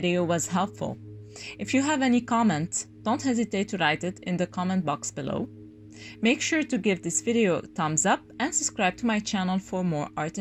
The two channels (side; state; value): both; identical; correlation 1.00